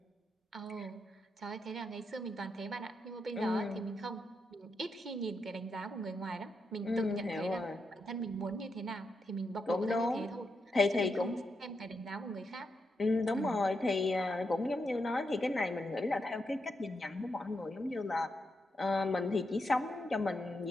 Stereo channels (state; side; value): normal; both; correlation 0.84